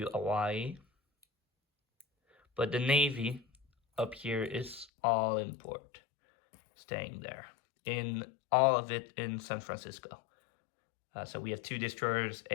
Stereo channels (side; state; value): right; drops out; at 4.9 s